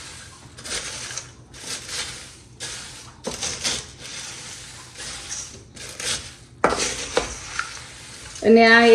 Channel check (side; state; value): both; identical; correlation 1.00